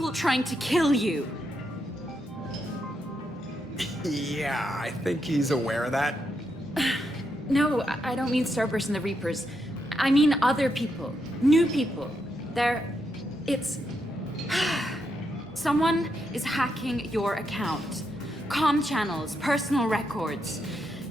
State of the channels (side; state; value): both; normal; correlation 0.81